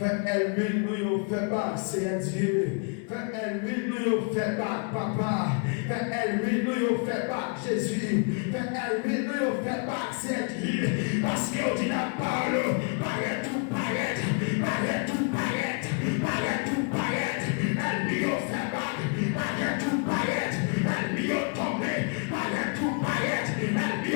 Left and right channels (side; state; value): right; quieter; 38.0 dB